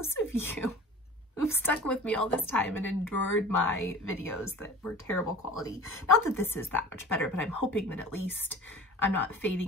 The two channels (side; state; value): both; normal; correlation 0.40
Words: of you who've stuck with me all this time and endured my videos that were terrible quality, not that this is that much better, but I'm hoping that at least I'm not